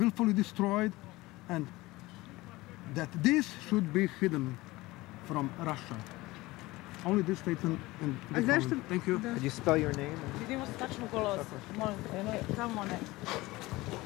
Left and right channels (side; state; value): right; quieter; 20.1 dB